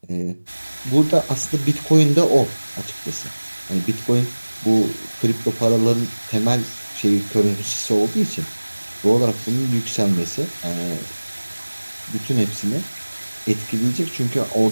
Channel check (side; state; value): both; inverted; correlation -1.00